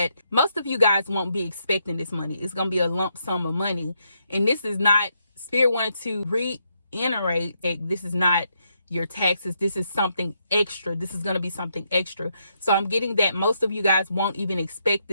most of you guys won't be expecting this money. It's going to be a lump sum of money. And this is not, Spirit wanted to reiterate that this is not your taxes. This is something extra. This is going to be something extra. So I'm getting that most of you guys won't even expect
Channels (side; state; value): both; inverted; correlation -0.78